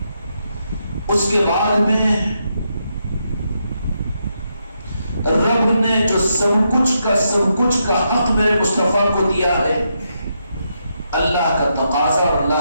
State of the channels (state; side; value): inverted; both; correlation -0.81